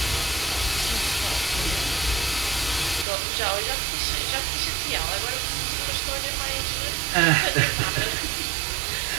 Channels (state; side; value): drops out; left; at 3.1 s